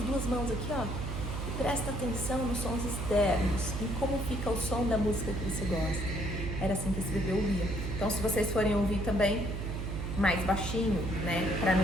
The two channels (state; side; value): noise; right; hum, 4 dB below the sound